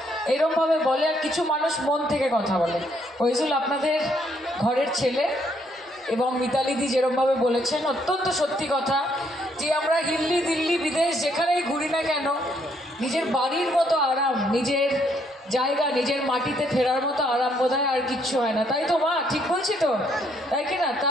এরকমভাবে বলে, আর কিছু মানুষ মন থেকে কথা বলে। ওইজুল আপনাদের ঘরের ছেলে, এবং মিতালিদি যেরকমভাবে বলেছেন অত্যন্ত সত্যি কথা, যে আমরা হিল্লি দিল্লি বিদেশ যেখানেই ঘুরি না কেন, নিজের বাড়ির মতো আরাম, নিজের জায়গা, নিজের মাটিতে ফেরার মতো আরাম বোধহয় আর কিচ্ছু হয় না। তাই তো মা, ঠিক বলছি তো, তাই কি না?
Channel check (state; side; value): normal; both; correlation 0.71